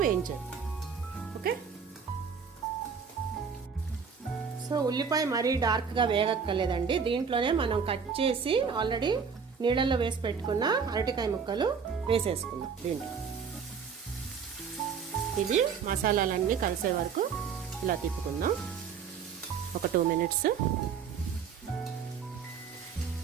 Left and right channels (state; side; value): quieter; left; 6.3 dB